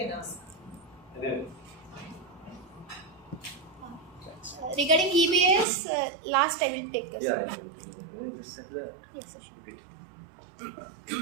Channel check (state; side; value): drops out; left; at 5.7 s